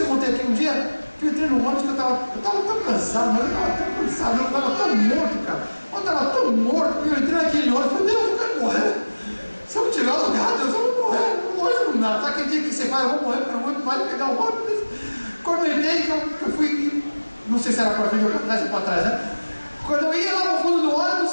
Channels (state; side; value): inverted; both; correlation -1.00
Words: contei aqui um dia que eu entrei no ônibus que eu estava tão cansado, mas eu estava tão cansado, eu estava tão morto, cara. Eu estava tão morto que eu entrei naquele ônibus e falei, Deus, eu quero morrer. Se eu tiver lugar, Deus, eu vou morrer. Hoje não dá. Sabe aquele dia que você fala, eu vou morrer, porque eu não vou pegar o ônibus? Quando eu entrei, que eu fui, não sei se era para frente ou para trás, né? Quando eu ia lá no fundo do